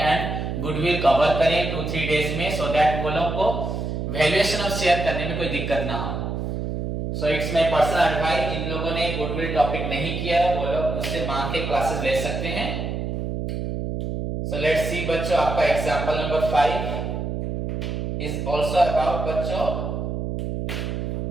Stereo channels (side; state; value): right; noise; hum, 3 dB below the sound